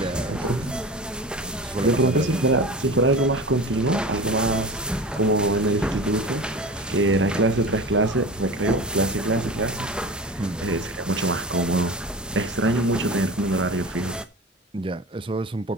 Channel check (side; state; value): both; normal; correlation 0.33